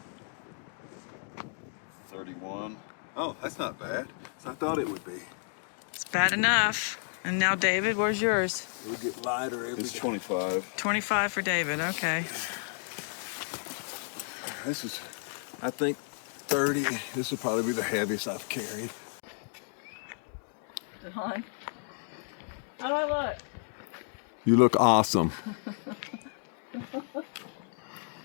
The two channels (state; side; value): silent; right; 56 dB below the other